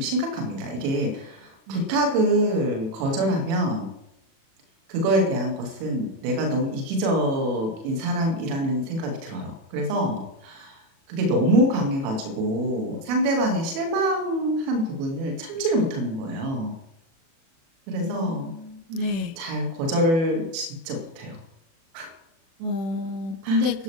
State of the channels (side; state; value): left; late; 36 ms